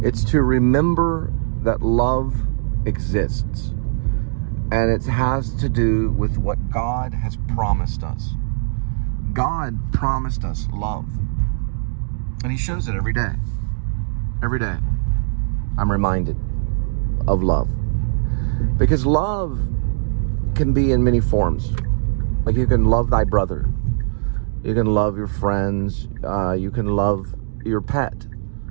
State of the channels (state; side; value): silent; left; digital silence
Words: it's to remember that love exists. And it has to do with what God has promised us. God promised us love. And he shows it every day. Every day. I'm reminded of love. Because love can be in many forms. Like you can love thy brother. You can love your friends. You can love your pet.